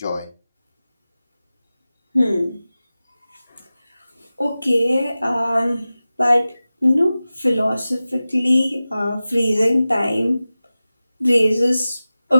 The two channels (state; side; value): inverted; both; correlation -0.96